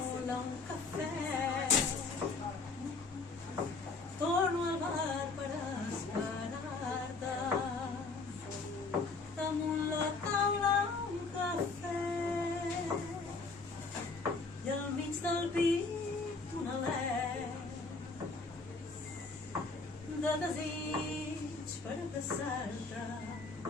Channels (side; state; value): right; quieter; 4.0 dB